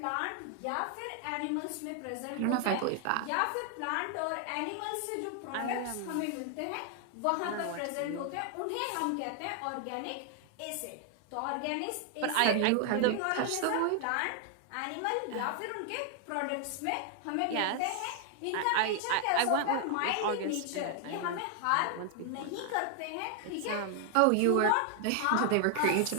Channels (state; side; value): different; both; correlation 0.00